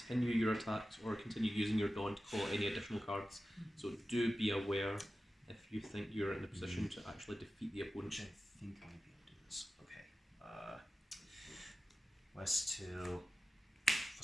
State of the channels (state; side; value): normal; both; correlation 0.94